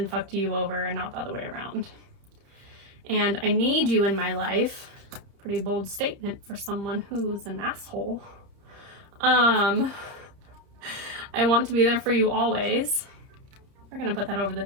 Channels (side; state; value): left; late; 30 ms